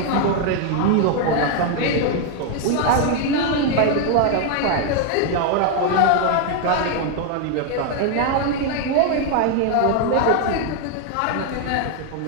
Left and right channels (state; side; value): different; both; correlation 0.01